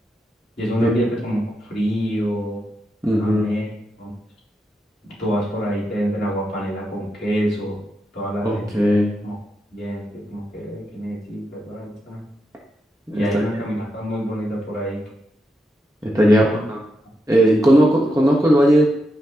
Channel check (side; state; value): both; normal; correlation 0.85